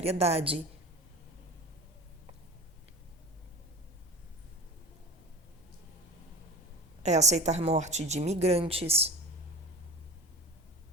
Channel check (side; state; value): both; normal; correlation 0.32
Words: É aceitar morte de imigrantes,